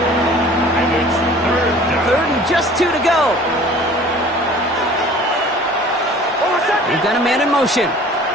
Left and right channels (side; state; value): both; normal; correlation 0.47